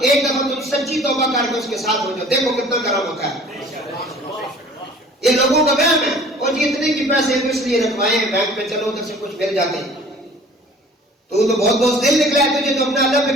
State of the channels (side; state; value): both; normal; correlation 0.49